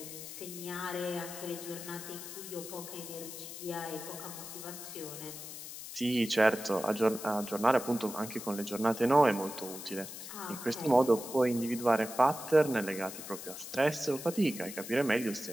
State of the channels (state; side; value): noise; left; hiss, 10 dB below the sound